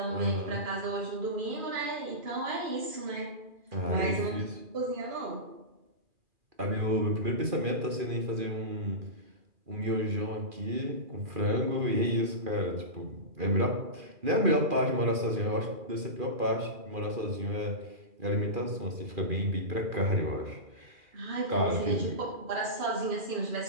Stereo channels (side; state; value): left; late; 2.4 ms